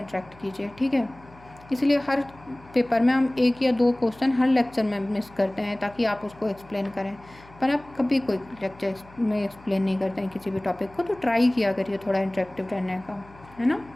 कीजिए। ठीक है, इसलिए हर पेपर में हम 1 या 2 क्वेश्चन हर लेक्चर में मिस करते हैं ताकि आप उसको एक्सप्लेन करें, पर आप कभी कोई लेक्चर में एक्सप्लेन नहीं करते हैं किसी भी टॉपिक को। तो ट्राई किया करिए थोड़ा इंटरेक्टिव रहने का, है ना।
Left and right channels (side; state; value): left; noise; hum, 24 dB below the sound